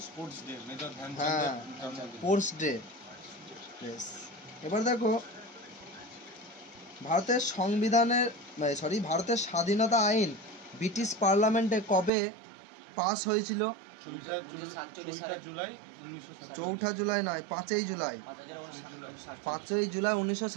Sports day, major Dhyanchand. হ্যাঁ, স্পোর্টস ডে। বেশ, এবার দেখো ভারতের সংবিধানের ভারতের স্বাধীনতা আইন ব্রিটিশ পার্লামেন্টে কবে পাস হয়েছিল? 4 জুলাই নয়, 5ই জুলাই। 5ই জুলাই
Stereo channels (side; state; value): left; drops out; at 12.1 s